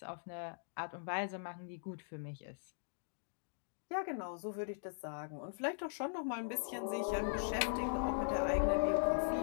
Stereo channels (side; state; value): right; silent; digital silence